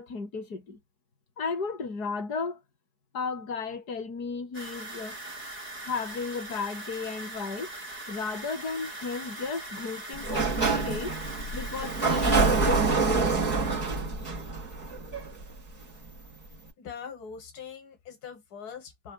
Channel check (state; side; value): late; right; 4.7 ms